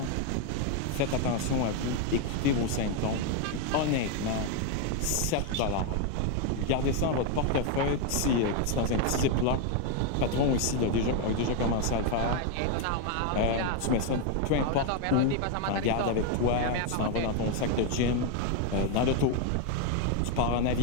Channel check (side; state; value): both; different; correlation 0.01